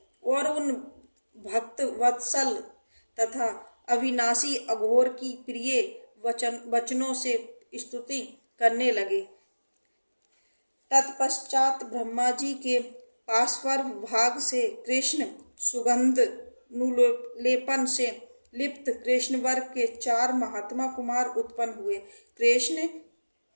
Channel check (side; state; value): both; inverted; correlation -1.00